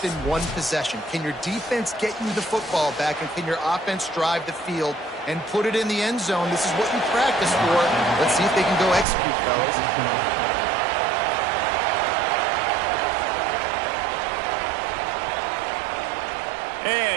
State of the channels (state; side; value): drops out; left; at 9.1 s